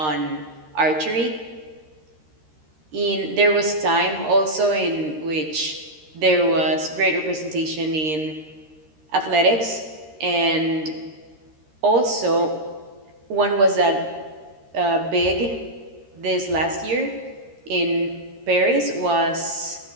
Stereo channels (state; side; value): late; left; 13 ms